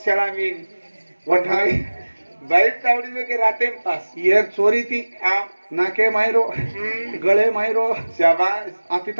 चला मीन वठाई बाइक तावड़ी में के राते में पास येर चोरी ती आओ नाके मायरो गळे मायरो शाबाश आती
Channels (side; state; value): both; inverted; correlation -1.00